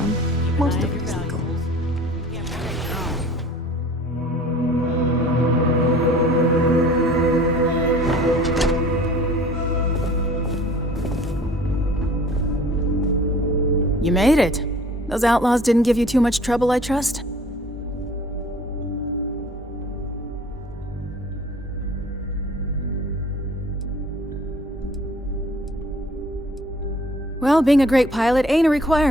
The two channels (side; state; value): both; normal; correlation 0.49